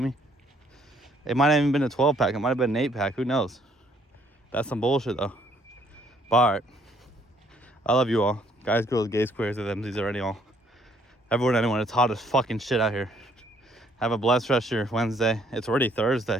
me? It might have even been a 12 pack. It might have been an 8-pack. Who knows? That's some bullshit though. But all right. I love you all. Guys, girls, gays, queers, these already all. Everyone, anyone, it's hot as fucking shit out here. Have a blessed rest of your Wednesday. It's already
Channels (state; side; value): normal; both; correlation 0.65